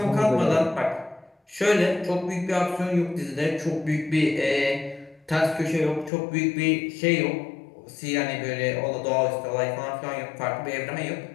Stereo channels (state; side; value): drops out; right; at 6.1 s